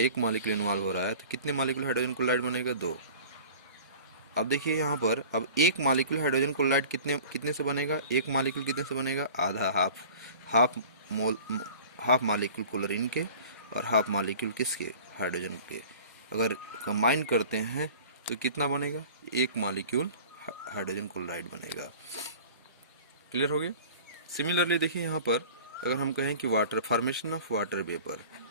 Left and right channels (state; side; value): inverted; both; correlation -0.43